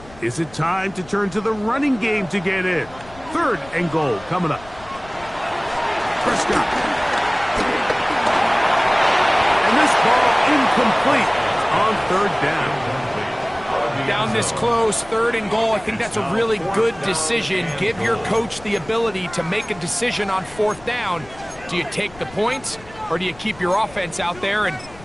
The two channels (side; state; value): left; noise; rumble, 21 dB below the sound